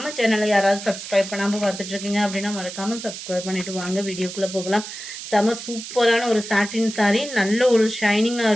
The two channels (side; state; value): right; noise; hiss, 10 dB below the sound